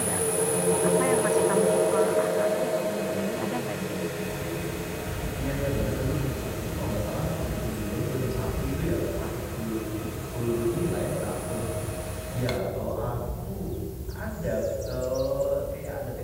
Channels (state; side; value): identical; both; correlation 1.00